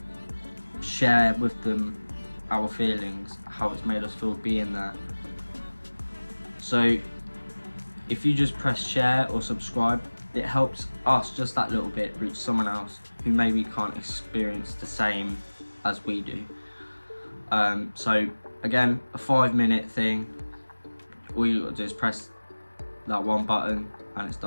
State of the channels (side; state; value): both; inverted; correlation -1.00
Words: share with them our feelings, how it's made us feel being there. So if you just press share or subscribe, it helps us just that little bit reach someone else who maybe can't experience the same as we do. So again, a 5-minute thing. All you got to do is press that one button and it's